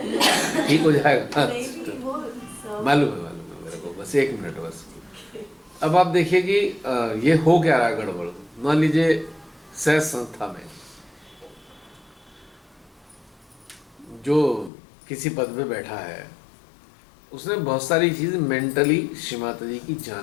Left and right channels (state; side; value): drops out; right; at 14.7 s